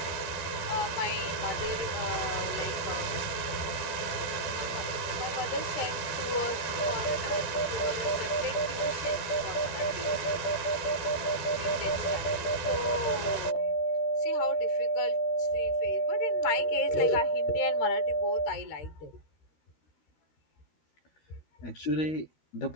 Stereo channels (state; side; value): late; right; 12 ms